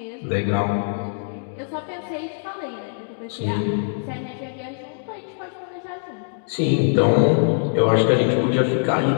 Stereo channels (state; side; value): silent; right; digital silence